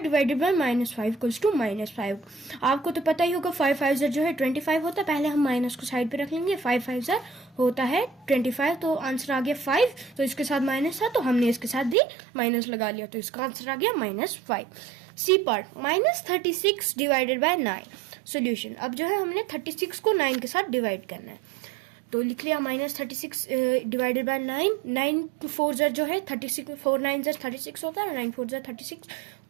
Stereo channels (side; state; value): left; drops out; at 12.0 s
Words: divided by -5 equals to -5. आपको तो पता ही होगा 5 5 जो है 25 होता है. पहले हम माइनस को साइड पे रख लेंगे. 5 5 होता है 25, तो आंसर आ गया 5. तो इसके साथ माइनस था, तो हमने इसके साथ भी माइनस लगा लिया, तो इसका आंसर आ गया -5. C part, -36 divided by 9. Solution, अब जो है हमने 36 को 9 के साथ डिवाइड करना है. तो लिख लिया -36 डिवाइडेड बाय 9. 9 4 जो है 36, 4 9 36 होता है. 9 4 36,